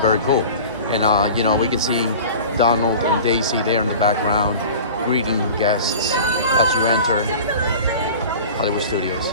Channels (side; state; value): both; inverted; correlation -0.38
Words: cool. And you know, we can see Donald and Daisy there in the background greeting guests as you enter Hollywood Studios.